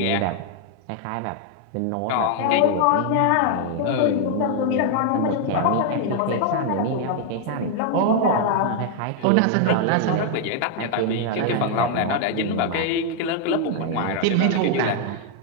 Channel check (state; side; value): different; both; correlation 0.00